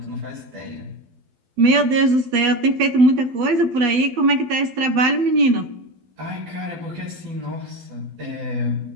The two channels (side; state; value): left; late; 12 ms